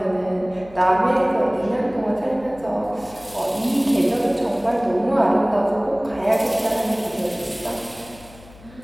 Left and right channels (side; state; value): left; noise; hum, 22 dB below the sound